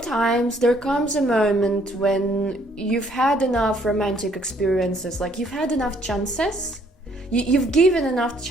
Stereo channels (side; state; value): both; normal; correlation 0.65